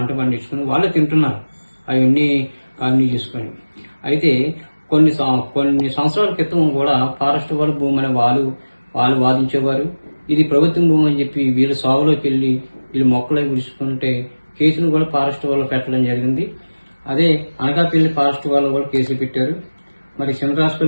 పండించుకుని వాళ్ళే తింటున్నారు, అవన్నీ కాలనీ చేసుకొని. అయితే కొన్ని సంవత్సరాల క్రితం కూడా ఫారెస్ట్ వాళ్ళ భూమి అని వాళ్ళు వాదించేవారు. ఇది ప్రభుత్వం భూమి అని చెప్పి వీళ్ళు సాగులోకి వెళ్ళి వీళ్ళు మొక్కలే గుడుచుకుంటే కేసులు కూడా ఫారెస్ట్ వాళ్ళు పెట్టడం జరిగింది. అదే అనకాపల్లి ఫారెస్ట్ వాళ్ళు కూడా కేసులు పెట్టారు. మరి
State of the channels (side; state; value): both; inverted; correlation -1.00